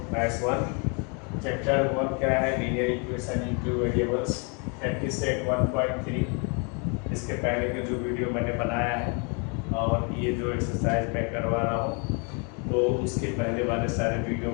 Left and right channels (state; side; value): quieter; right; 35.4 dB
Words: maths 1 chapter 1 क्या है, linear equation into variables practice set 1.3। इसके पहले के जो वीडियो मैंने बनाया है और ये जो एक्सरसाइज मैं करवा रहा हूँ, तो उसके पहले वाले सारे वीडियो